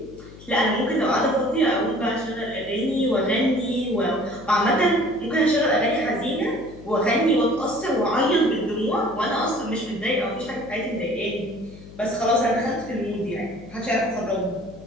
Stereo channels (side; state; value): left; noise; hum, 19 dB below the sound